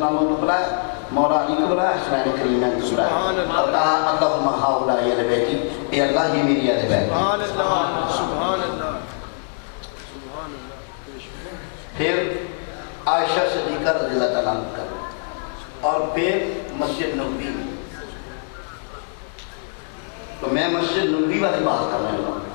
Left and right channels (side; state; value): right; silent; 64 dB below the other